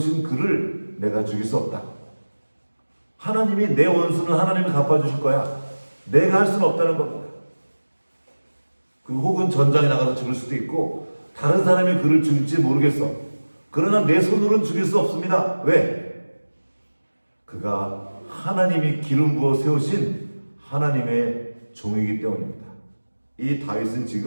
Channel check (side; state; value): both; inverted; correlation -1.00